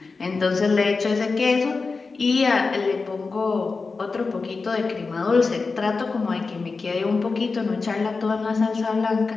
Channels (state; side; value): quieter; right; 4.3 dB